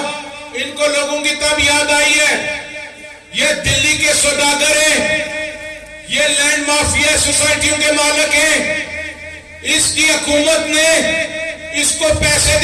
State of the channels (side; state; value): both; identical; correlation 1.00